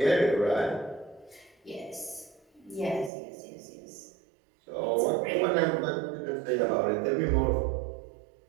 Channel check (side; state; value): left; drops out; at 3.1 s